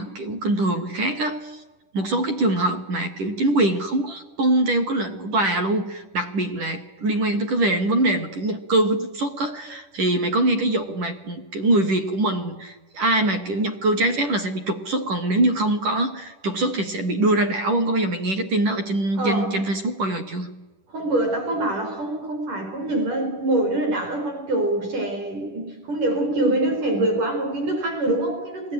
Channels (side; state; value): left; late; 10 ms